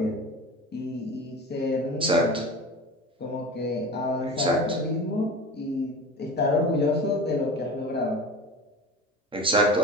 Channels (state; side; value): normal; both; correlation 0.33